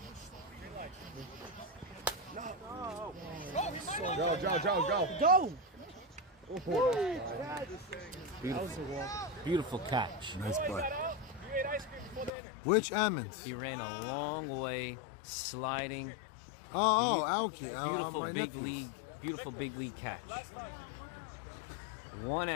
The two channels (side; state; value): right; drops out; at 12.3 s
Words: Go. Beautiful catch. Nice play. Which Ammons? He ran a long way, sliding. Oh, Alki. Beautiful big league catch. 1